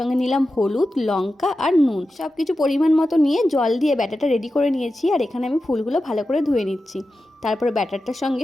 নিলাম হলুদ, লঙ্কা আর নুন, সব কিছু পরিমাণ মতো নিয়ে জল দিয়ে ব্যাটারটা রেডি করে নিয়েছি। আর এখানে আমি ফুলগুলো ভালো করে ধুয়ে নিচ্ছি। তারপরে ব্যাটারটার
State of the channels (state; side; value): normal; both; correlation 0.92